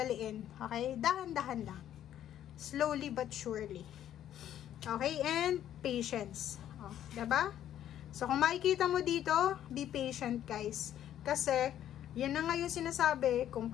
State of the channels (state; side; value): quieter; right; 11.2 dB